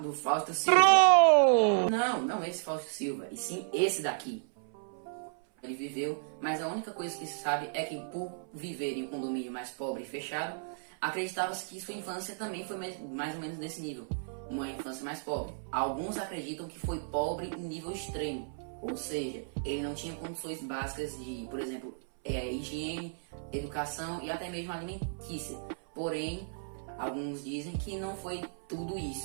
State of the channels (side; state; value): left; silent; 56 dB below the other